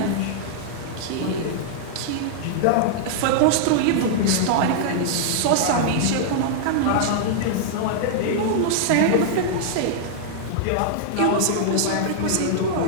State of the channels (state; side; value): different; both; correlation -0.01